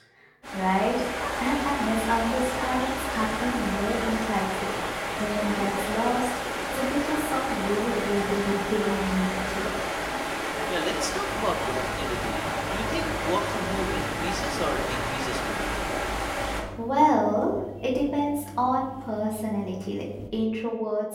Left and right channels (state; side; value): identical; both; correlation 1.00